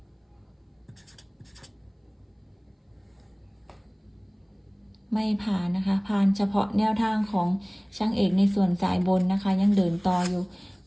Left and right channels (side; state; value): both; identical; correlation 1.00